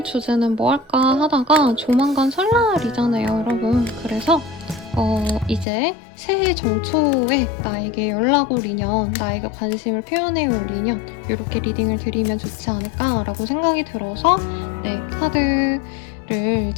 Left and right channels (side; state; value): right; drops out; at 5.7 s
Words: 주제는 뭐 할까 하다가 조만간 설날이잖아요 여러분. 그래서 이제 새해 정초에 나에게 연락 올 인연, 나에게 관심을 표현해 올 인연, 이렇게 리딩을 드리면 좋지 않을까 라고 생각이 들어서 카드를